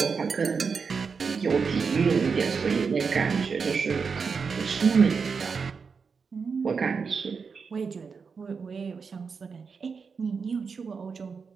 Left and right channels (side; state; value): left; quieter; 5.4 dB